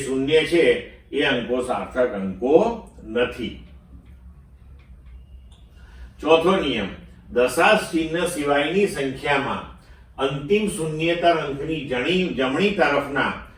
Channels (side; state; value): both; identical; correlation 1.00